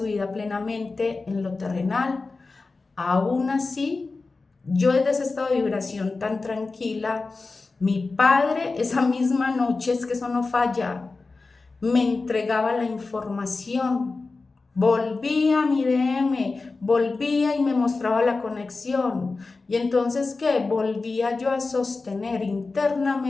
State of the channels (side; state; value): right; quieter; 3.8 dB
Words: vida plenamente en lo terrenal. Aún así, yo desde ese estado de vibración tan tranquila, mi padre esa misma noche, es que eso no falla, me entregaba la información. Volví a mi DM volvía y me mostraba la conexión. Y entonces, ¿qué? Volvía yo a sostener